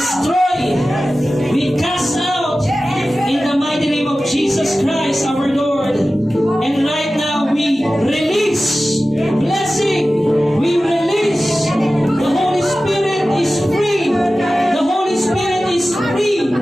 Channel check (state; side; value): normal; both; correlation 0.95